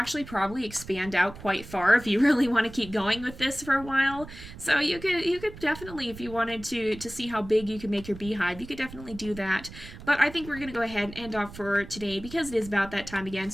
probably expand out quite far if you really want to keep going with this for a while. So you could definitely, if you wanted to see how big you can make your beehive, you could definitely do that. But I think we're going to go ahead and end off for today because it is about that time again.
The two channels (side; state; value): right; noise; rumble, 15 dB below the sound